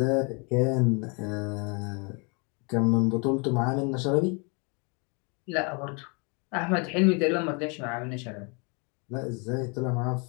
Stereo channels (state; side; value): quieter; right; 32.9 dB